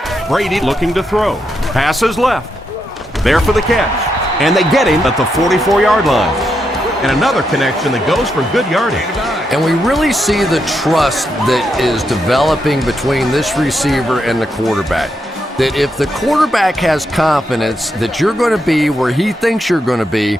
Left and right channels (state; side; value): normal; both; correlation 0.82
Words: Brady looking to throw. Passes left. There for the catch. And they get him at the 44-yard line. And another connection that goes for good yardage. And we really see the trust that is developing between this receiver and the quarterback. That if the quarterback has confidence that you're going to be where he thinks you're going to be,